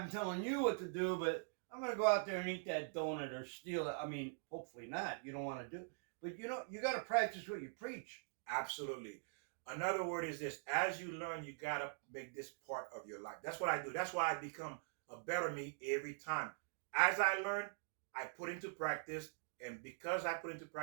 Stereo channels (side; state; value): left; silent; digital silence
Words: telling you what to do, but I'm going to go out there and eat that donut or steal it. I mean, hopefully not. You don't want to do it. But, you got to practice what you preach. Absolutely. Another word is this. As you learn, you got to make this part of your life. That's what I do. That's why I become a better me every time. As I learn, I put into practice. And because I put into